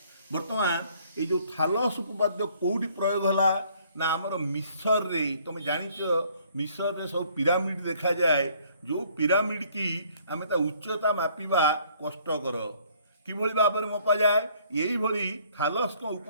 ବର୍ତ୍ତମାନ ଏଇ ଯେଉଁ ଥାଲସ୍ ଉପପାଦ୍ୟ କେଉଁଠି ପ୍ରୟୋଗ ହେଲା ନା ଆମର ମିଶରରେ। ତୁମେ ଜାଣିଛ ମିଶରରେ ସବୁ ପିରାମିଡ଼ ଦେଖାଯାଏ। ଯେଉଁ ପିରାମିଡ଼ କି ଆମେ ତା ଉଚ୍ଚତା ମାପିବା କଷ୍ଟକର। କିଭଳି ଭାବରେ ମପାଯାଏ? ଏଇଭଳି ଥାଲସ୍ଙ୍କ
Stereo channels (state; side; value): inverted; both; correlation -0.61